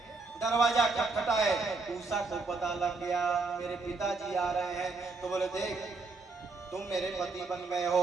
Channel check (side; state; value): left; quieter; 3.9 dB